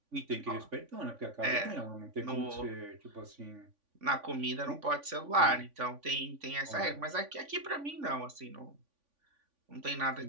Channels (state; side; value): late; left; 3.5 ms